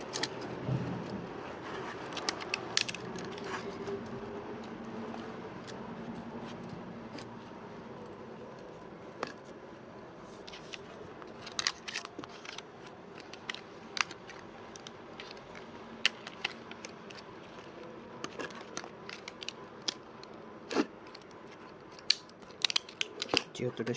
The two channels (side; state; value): both; identical; correlation 1.00